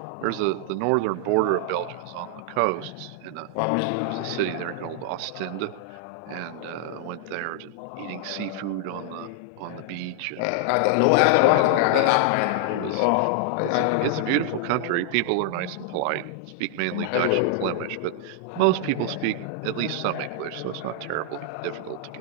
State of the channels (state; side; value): different; both; correlation 0.00